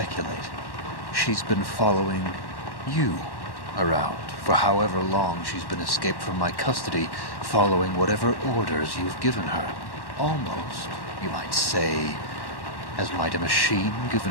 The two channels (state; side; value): late; right; 1.1 ms